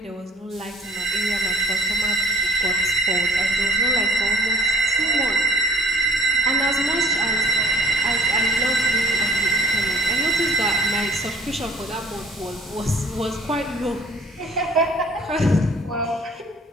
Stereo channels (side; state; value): both; normal; correlation 0.54